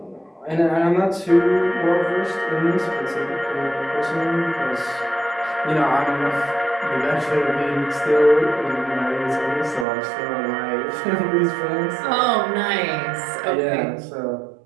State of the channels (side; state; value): left; drops out; at 9.9 s